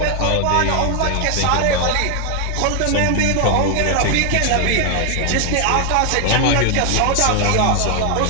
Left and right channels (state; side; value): different; both; correlation 0.00